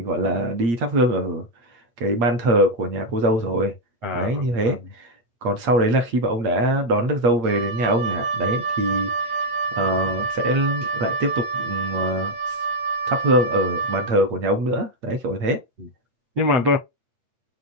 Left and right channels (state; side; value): late; left; 8.6 ms